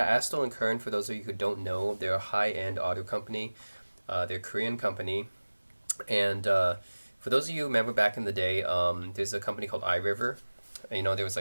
Kern, for those of you who don't know, they're a high-end audio company. They're a Korean company, and for those of you who remember back in the day, there's a company called iRiver. There was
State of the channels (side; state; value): both; inverted; correlation -1.00